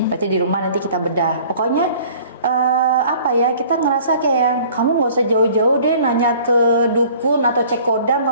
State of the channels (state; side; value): inverted; both; correlation -0.51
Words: Berarti di rumah nanti kita bedah. Pokoknya apa ya, kita ngerasa kayak yang kamu nggak usah jauh-jauh deh nanya ke dukun atau cek kodam,